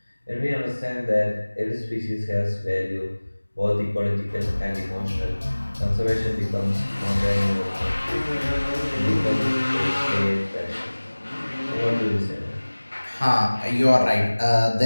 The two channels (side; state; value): both; inverted; correlation -1.00